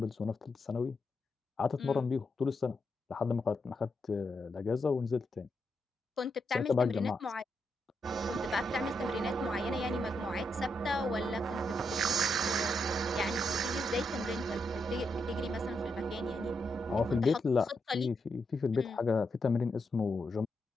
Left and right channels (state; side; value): normal; both; correlation 0.82